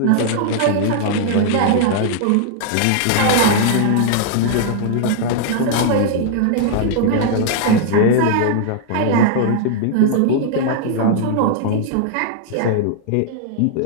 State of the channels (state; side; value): different; both; correlation 0.00